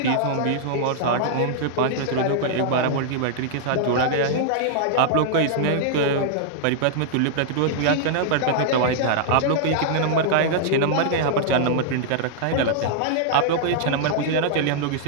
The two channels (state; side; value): different; both; correlation -0.01